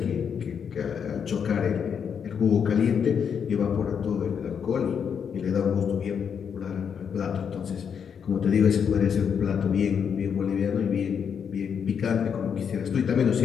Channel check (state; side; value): quieter; right; 7.2 dB